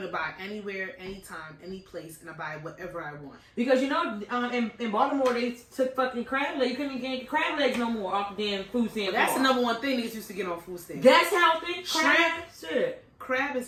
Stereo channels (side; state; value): both; identical; correlation 1.00